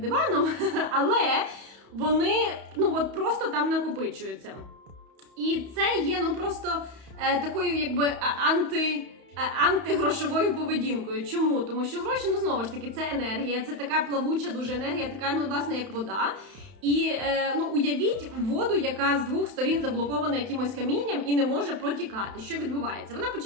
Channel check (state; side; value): late; left; 31 ms